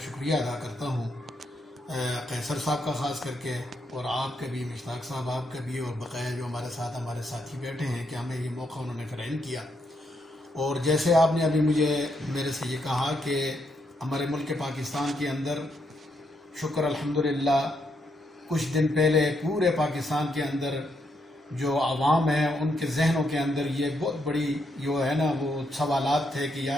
شکریہ ادا کرتا ہوں، قیصر صاحب کا خاص کر کے، اور آپ کا بھی، مشتاق صاحب آپ کا بھی، اور بقیہ جو ہمارے ساتھی بیٹھے ہیں کہ ہمیں یہ موقع انہوں نے فراہم کیا. اور جیسے آپ نے ابھی میرے سے یہ کہا کہ ہمارے ملک پاکستان کے اندر شکر الحمدللہ کچھ دن پہلے پورے پاکستان کے اندر جو عوام ہیں ان کے ذہنوں کے اندر یہ بہت بڑی جو ہے نا وہ سوالات تھے کہ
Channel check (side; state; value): both; normal; correlation 0.78